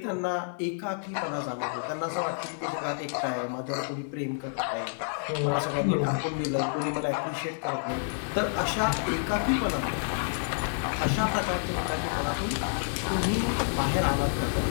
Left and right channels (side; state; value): right; silent; digital silence